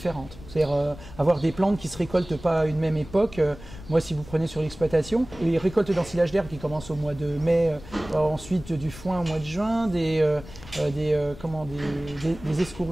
C'est-à-dire avoir des plantes qui se récoltent pas à une même époque. Moi, si vous prenez sur l'exploitation, les récoltes d'ensilage d'herbe qui commencent au mois de mai, ensuite du foin au mois de juin, des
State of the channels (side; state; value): left; noise; rumble, 16 dB below the sound